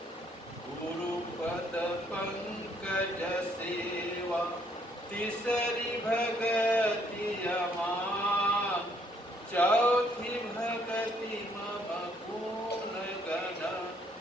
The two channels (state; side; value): normal; both; correlation 0.67